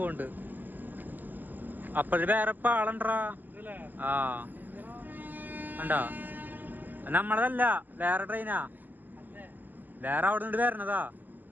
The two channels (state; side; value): late; left; 0.086 ms